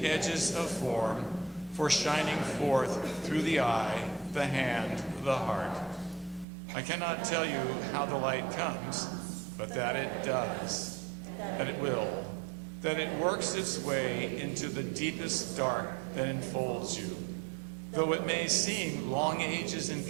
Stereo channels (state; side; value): drops out; left; at 6.5 s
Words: edges of form, for shining forth through the eye, the hand, the heart. I cannot tell you how the light comes, but that it does, that it will, that it works its way into the deepest dark that enfolds you, though it may seem long ages in